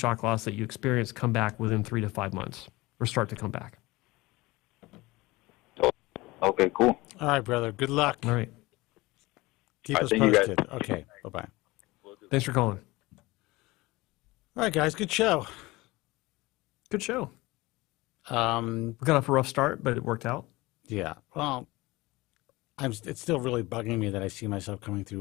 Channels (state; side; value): quieter; right; 21.1 dB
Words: loss that you experience come back within 3 to 5 months or start to come back. Okay, cool. All right, brother. Good luck. All right. Keep us posted. Okay, bye-bye. Thanks for calling. All right, guys. Good show. Good show. We got off a rough start, but it worked out. Yeah. Well, it's still really bugging me that I see myself coming